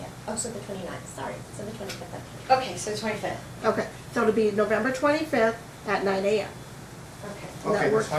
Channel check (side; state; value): both; identical; correlation 1.00